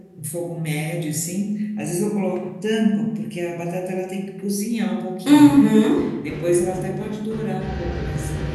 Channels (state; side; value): identical; both; correlation 1.00